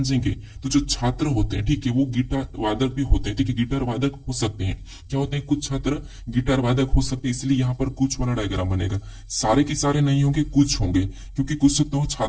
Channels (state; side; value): identical; both; correlation 1.00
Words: तो जो छात्र होते हैं, ठीक है, वो गिटार वादक भी होते हैं। ठीक है, गिटार वादक हो सकते हैं, क्या होते हैं, कुछ छात्र गिटार वादक हो सकते हैं, इसलिए यहाँ पर कुछ वाला डायग्राम बनेगा। सारे के सारे नहीं होंगे, कुछ होंगे, क्योंकि कुछ तो